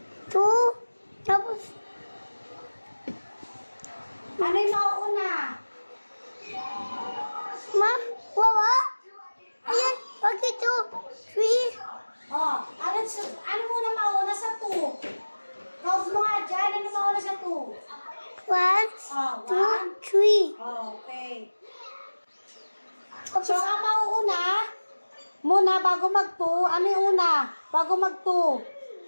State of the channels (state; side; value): inverted; both; correlation -1.00